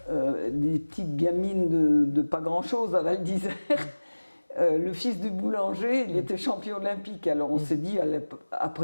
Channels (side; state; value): both; inverted; correlation -1.00